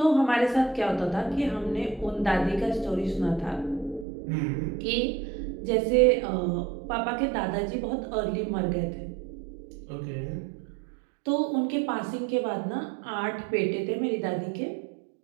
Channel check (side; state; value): left; drops out; at 4.0 s